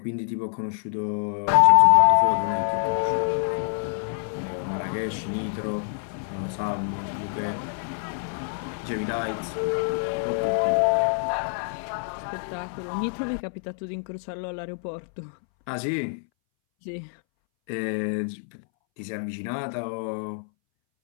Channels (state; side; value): silent; right; 61 dB below the other